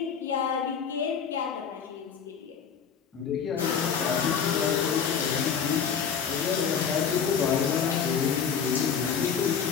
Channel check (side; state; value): right; quieter; 7.1 dB